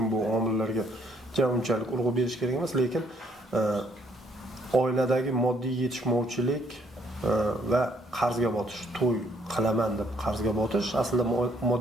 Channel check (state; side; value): normal; both; correlation 0.67